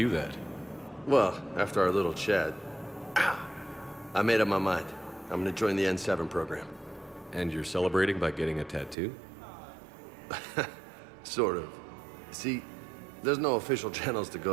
that. Well, after our little chat, I made up my mind. I'm gonna join the N7 program. And you're celebrating by getting a tattoo? Sort of. See, there's no official channels to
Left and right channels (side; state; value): left; drops out; at 9.0 s